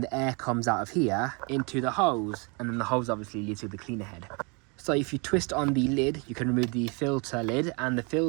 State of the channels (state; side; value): quieter; left; 31.9 dB